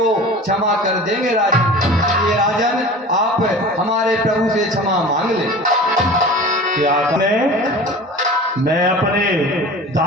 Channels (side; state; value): both; normal; correlation 0.38